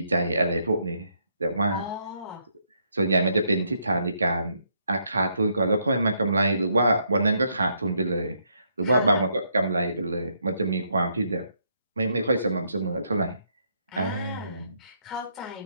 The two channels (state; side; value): inverted; both; correlation -0.74